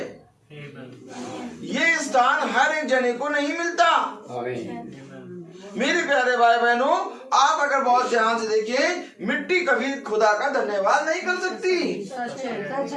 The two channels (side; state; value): both; identical; correlation 1.00